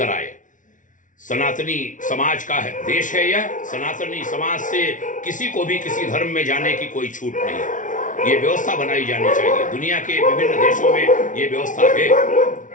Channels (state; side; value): late; right; 0.37 ms